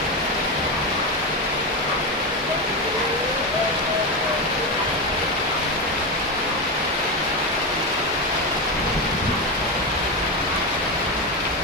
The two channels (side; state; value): both; normal; correlation 0.14